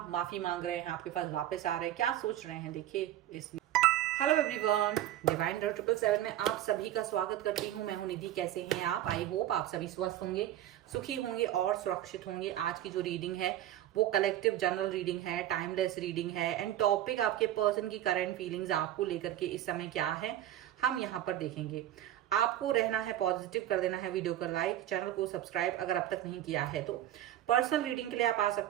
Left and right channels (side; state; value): left; quieter; 12.7 dB